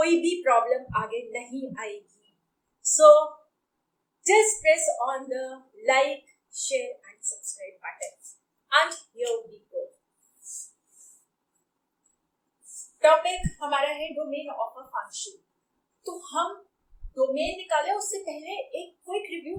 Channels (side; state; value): both; identical; correlation 1.00